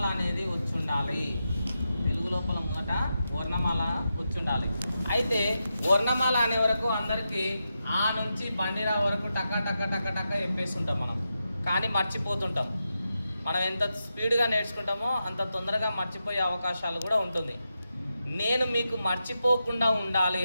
అనేది వచ్చుండాలి. తెలుగు లోపల మొదట వర్ణమాల వచ్చుండాలి. అయితే వర్ణమాల అనే వరకు అందరికీ ఆ నుంచి బండిరా వరకు టక టక టక టక చెప్పేస్తుంటాం మనం, కానీ మర్చిపోతుంటాం. మనం ఎంత స్పీడ్గా నేర్చుకుంటామో అంత తొందరగా మర్చిపోయే అవకాశాలు కూడా ఉంటుంది. నేను మీకు మర్చిపోకుండా ఉండాలి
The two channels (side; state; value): both; inverted; correlation -0.88